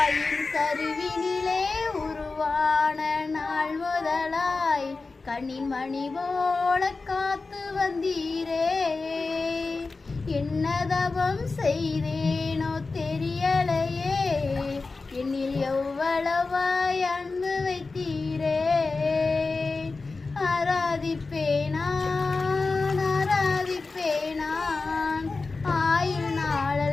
கருவினிலே உருவான நாள் முதலாய் கண்ணின் மணி போல காத்து வந்தீரே. என்னதவம் செய்தேனோ தெரியலையே, என்னில் எவ்வளவாய் அன்பு வைத்தீரே. ஆராதிப்பேன் நான் ஆயுள்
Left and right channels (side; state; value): right; quieter; 3.9 dB